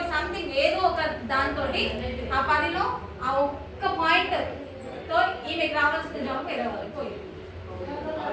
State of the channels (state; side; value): identical; both; correlation 1.00